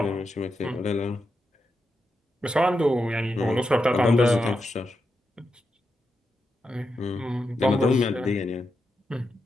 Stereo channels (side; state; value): both; normal; correlation 0.86